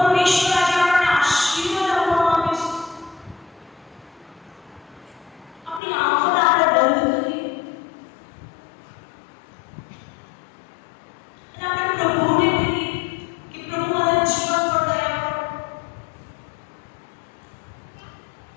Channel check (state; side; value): drops out; right; at 5.8 s